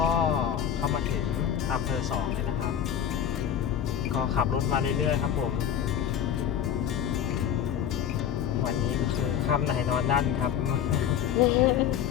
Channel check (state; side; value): quieter; right; 9.2 dB